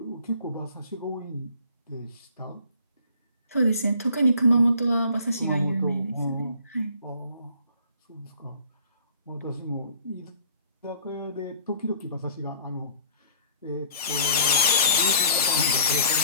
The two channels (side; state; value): both; inverted; correlation -0.51